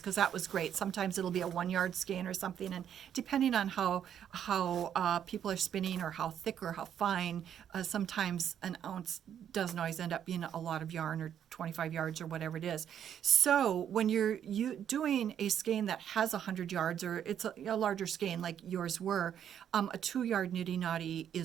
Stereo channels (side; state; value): left; quieter; 9.4 dB